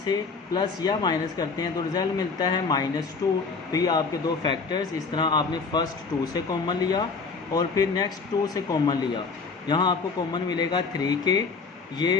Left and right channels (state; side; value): quieter; right; 4.7 dB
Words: प्लस या माइनस करते हैं तो रिज़ल्ट मिलता है -2। तो ये आपके दो फैक्टर्स, इस तरह आपने फर्स्ट 2 से कॉमन लिया और फिर नेक्स्ट 2 से कॉमन लिया। यहाँ आपको कॉमन मिलेगा 3 के,